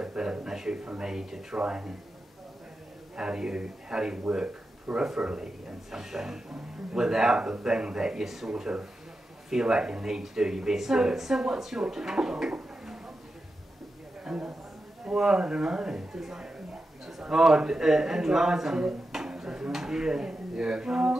bit of an issue for me to try and. How do you work peripherally in something without the thing that you sort of feel like you need to do your best work? So what's your title in this? Well, I don't know. Design. Oh, it lies on Yeah. Yeah.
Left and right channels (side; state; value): both; normal; correlation 0.90